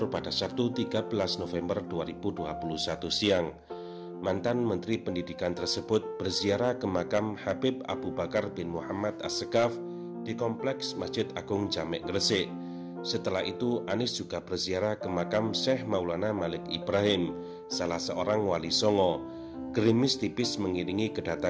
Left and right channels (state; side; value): identical; both; correlation 1.00